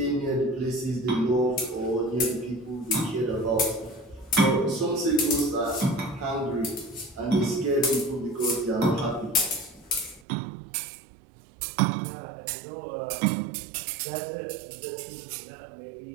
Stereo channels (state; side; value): drops out; left; at 10.2 s